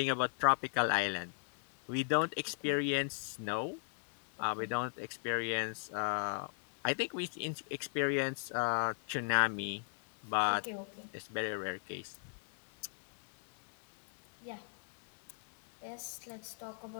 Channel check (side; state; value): right; silent; 53 dB below the other